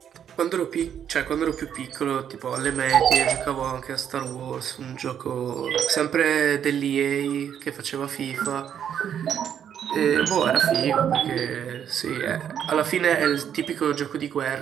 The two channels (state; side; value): quieter; left; 8.9 dB